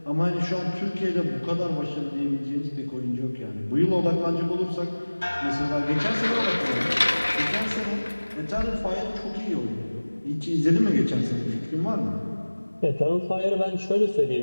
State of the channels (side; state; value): both; inverted; correlation -1.00